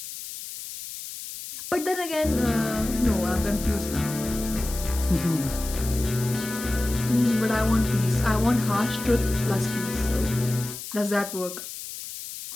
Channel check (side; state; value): left; noise; hiss, 10 dB below the sound